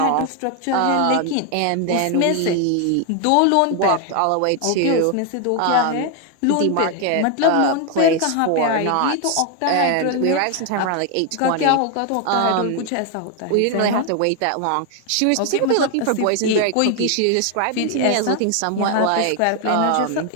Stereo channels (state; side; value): different; both; correlation 0.01